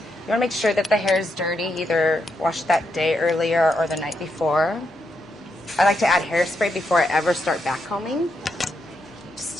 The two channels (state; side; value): normal; both; correlation 0.82